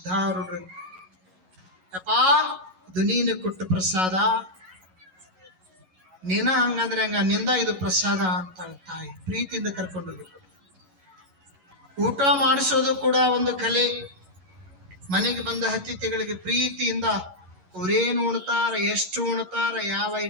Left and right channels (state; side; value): late; left; 11 ms